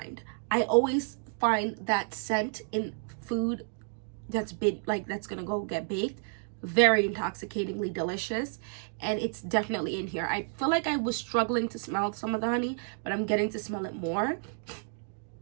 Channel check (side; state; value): left; silent; 57 dB below the other